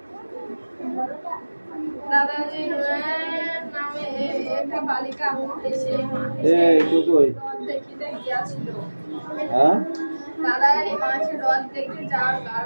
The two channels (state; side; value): inverted; both; correlation -1.00